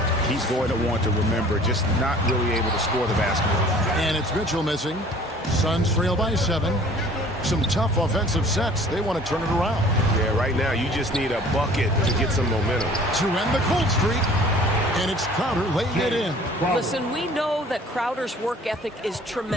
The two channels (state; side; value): normal; both; correlation 0.50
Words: he's going to want to remember, just not really able to score the basketball. And it's Mitchell missing. Suns trail by 7. Some tough offensive sets. They want to turn it around. Yeah, right now you just need a bucket to get some momentum. To end the cold streak. And it's Crowder laying it in. Listen, we know that Crowder's work ethic is